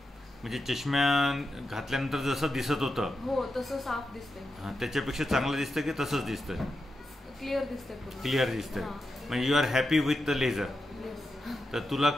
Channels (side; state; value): both; normal; correlation 0.88